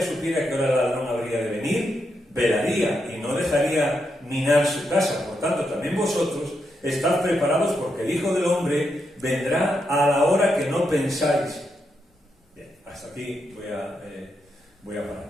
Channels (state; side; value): normal; both; correlation 0.83